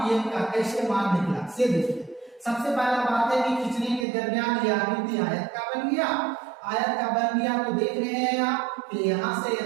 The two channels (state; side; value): drops out; left; at 4.0 s